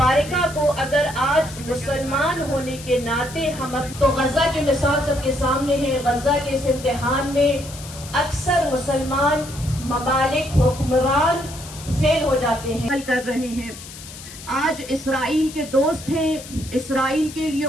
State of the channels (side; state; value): left; noise; hiss, 15 dB below the sound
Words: को अगर आज मुसलमान होने के नाते हम तो गजा की मिसाल सबके सामने है। गजा के इस इम्तिहान में अक्सर मुसलमान ममालिक हुक्मरान फेल हो जाते हैं, कर रहे हैं। आज इसराइल के दोस्त हैं, इसराइल के लिए